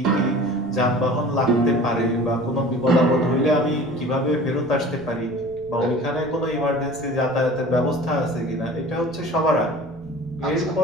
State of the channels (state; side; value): noise; right; rumble, 23 dB below the sound